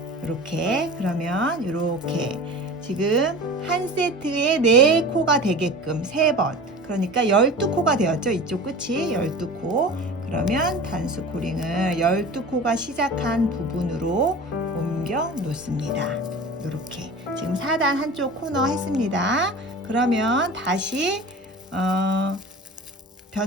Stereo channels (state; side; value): normal; both; correlation 0.36